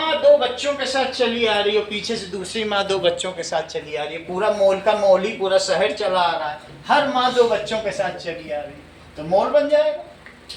बच्चों के साथ चली आ रही हो, पीछे से दूसरी माँ 2 बच्चों के साथ चली आ रही है, पूरा मोल का मोल ही पूरा शहर चला आ रहा है, हर माँ 2 बच्चों के साथ चली आ रही है, तो मोल बन जाएगा।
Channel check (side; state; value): both; identical; correlation 1.00